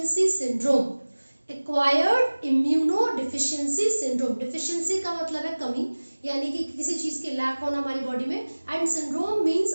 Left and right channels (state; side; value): inverted; both; correlation -1.00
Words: syndrome. Acquired immunodeficiency syndrome, deficiency का मतलब है कमी, यानी कि किसी चीज के लैक होना हमारी बॉडी में, and syndrome means